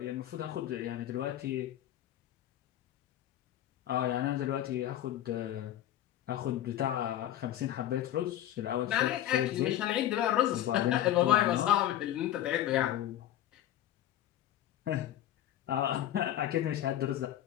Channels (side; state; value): right; quieter; 12.3 dB